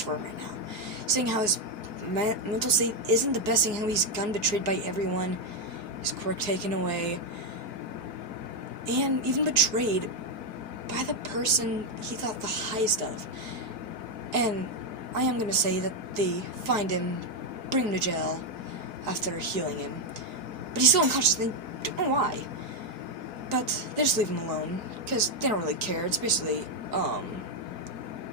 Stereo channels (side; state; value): left; late; 4.8 ms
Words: for him right now. Seeing how his mental state isn't the best, seeing how he's gotten betrayed by everyone, his quirk taken away, and even betrayed by the person he thought the highest of. And I am gonna say that they find him, bring him to jail after healing him, but he's still unconscious, and they don't know why. But they just leave him alone, because they don't really care. It's basically,